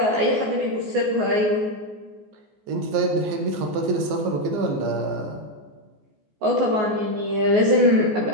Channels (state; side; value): late; left; 14 ms